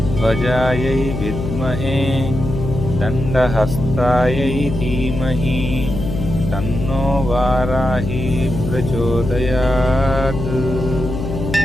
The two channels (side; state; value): left; noise; hum, 5 dB below the sound